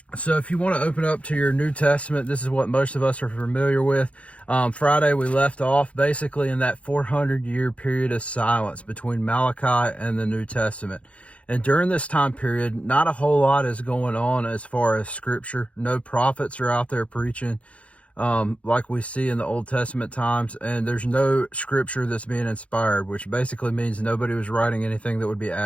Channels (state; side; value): late; right; 0.063 ms